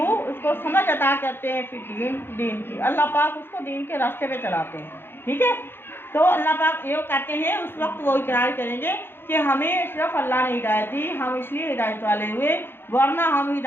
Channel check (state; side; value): late; right; 0.10 ms